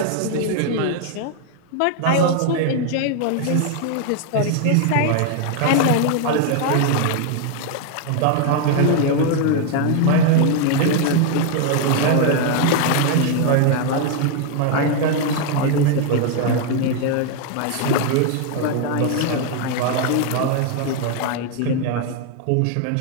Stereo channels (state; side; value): different; both; correlation 0.00